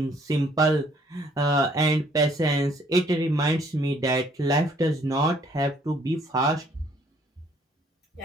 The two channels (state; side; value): normal; both; correlation 0.62